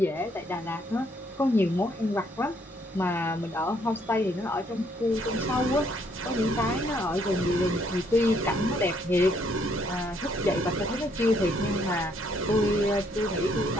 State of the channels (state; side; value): normal; both; correlation 0.69